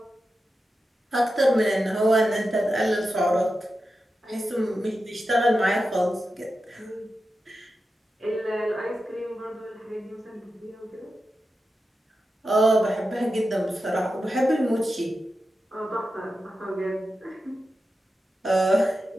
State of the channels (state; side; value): normal; both; correlation 0.91